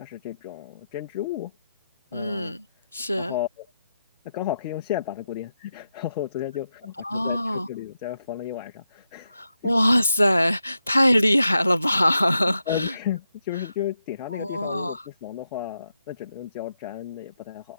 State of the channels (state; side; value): inverted; both; correlation -0.86